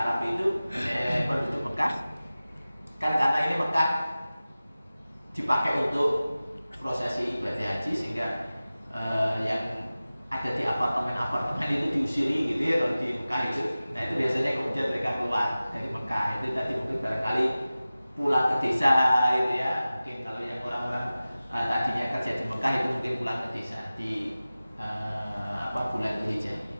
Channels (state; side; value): inverted; both; correlation -0.97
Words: itu penduduk Mekah, kan karena ini Mekah dipakai untuk prosesi ibadah haji, sehingga yang ada di apartemen itu diusiri gitu ya kalau di Mekah itu. Nah itu biasanya kemudian mereka keluar dari Mekah. Itu tadi mungkin barangkali pulang ke desa itu ya. Mungkin kalau yang orang-orang tadinya kerja di Mekah itu mungkin pulang ke desa di bulan Dzulhijjah.